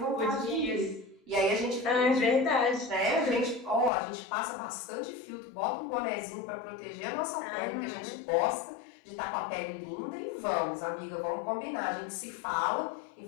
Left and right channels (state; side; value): drops out; right; at 3.9 s